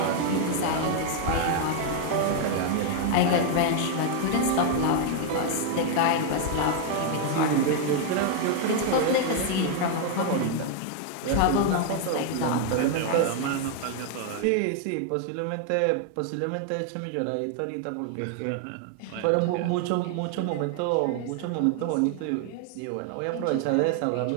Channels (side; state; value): both; different; correlation 0.00